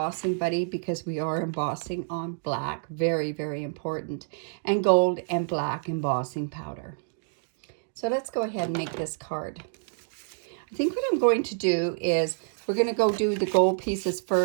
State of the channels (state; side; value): silent; left; 59 dB below the other